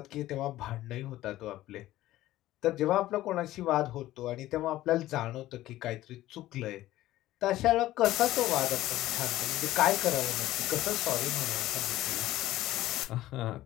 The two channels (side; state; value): right; quieter; 15.3 dB